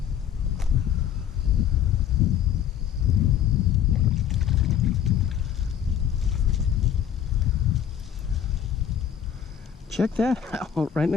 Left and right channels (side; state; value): right; quieter; 9.2 dB